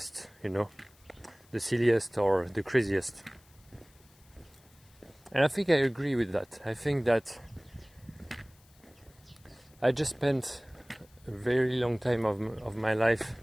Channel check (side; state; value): left; noise; hiss, 29 dB below the sound